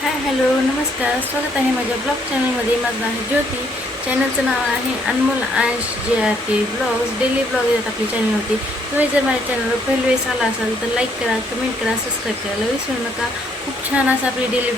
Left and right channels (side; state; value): both; normal; correlation 0.69